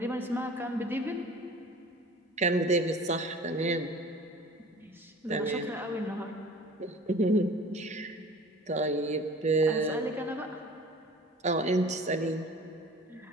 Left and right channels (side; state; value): both; normal; correlation 0.44